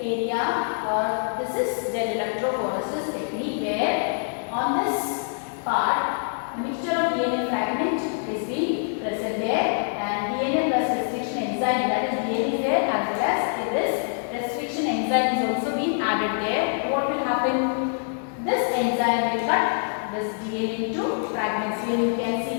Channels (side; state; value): right; silent; digital silence